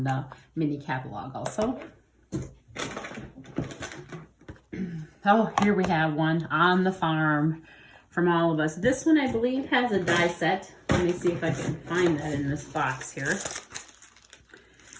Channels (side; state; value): both; identical; correlation 1.00